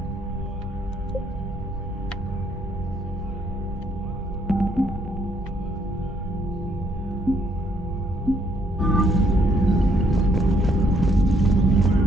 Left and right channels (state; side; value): normal; both; correlation 0.70